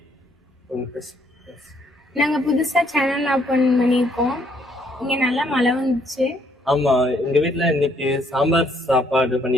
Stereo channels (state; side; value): normal; both; correlation 0.68